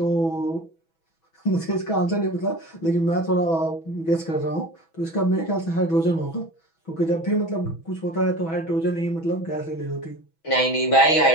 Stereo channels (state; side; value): late; right; 6.1 ms